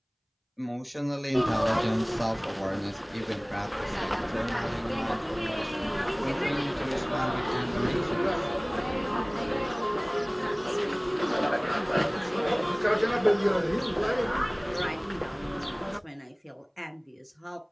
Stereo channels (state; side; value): identical; both; correlation 1.00